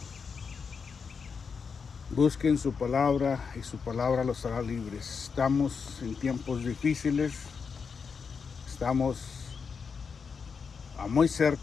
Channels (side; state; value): right; quieter; 5.7 dB